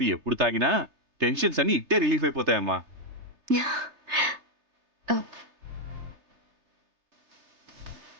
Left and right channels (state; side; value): late; left; 3.3 ms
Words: ఎప్పుడు తాగినా టెన్షన్స్ అన్ని ఇట్టే రిలీఫ్ అయిపోతాయమ్మా.